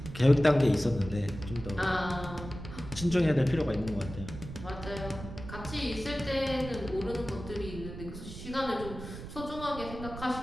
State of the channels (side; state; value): right; noise; rumble, 11 dB below the sound